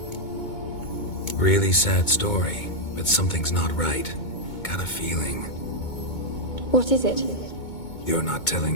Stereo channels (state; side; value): late; right; 2.2 ms